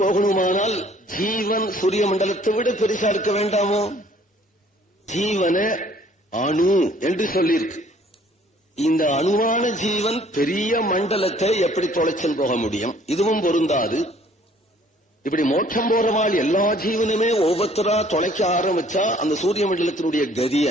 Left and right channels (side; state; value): both; normal; correlation 0.58